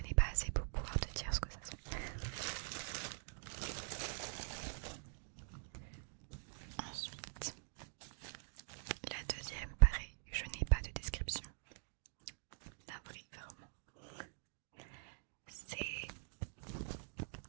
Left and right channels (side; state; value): left; silent; digital silence